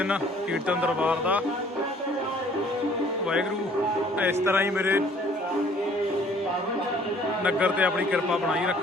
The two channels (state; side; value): normal; both; correlation 0.56